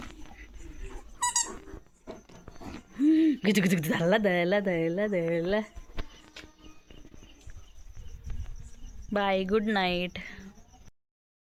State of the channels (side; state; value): both; identical; correlation 1.00